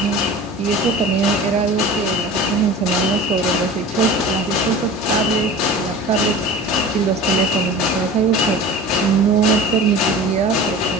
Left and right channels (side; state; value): both; normal; correlation 0.37